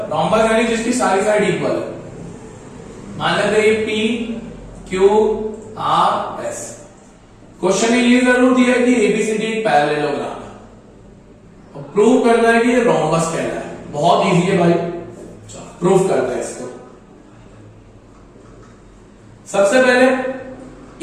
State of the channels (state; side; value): identical; both; correlation 1.00